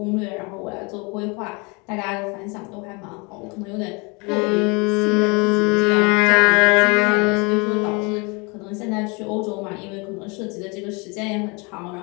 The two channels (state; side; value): quieter; right; 29.8 dB